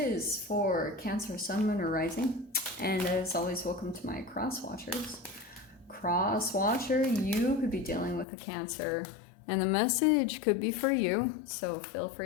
for Cancer, Sun, Moon, or Rising, and as always, welcome to my cross watchers. Cross watcher, you could be dealing with a Cancer, and the message could be for you, so feel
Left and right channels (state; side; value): drops out; right; at 8.2 s